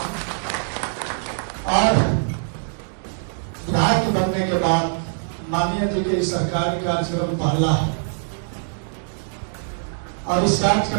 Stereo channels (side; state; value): left; silent; digital silence